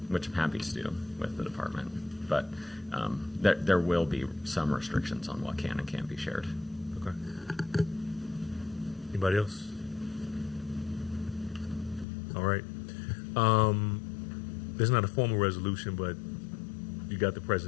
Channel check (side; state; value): right; drops out; at 12.1 s